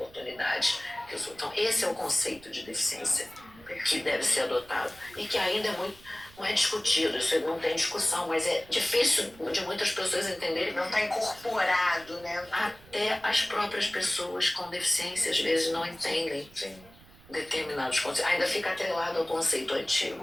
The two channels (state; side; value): noise; right; rumble, 23 dB below the sound